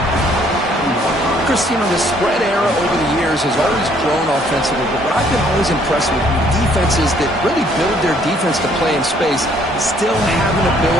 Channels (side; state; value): both; normal; correlation 0.63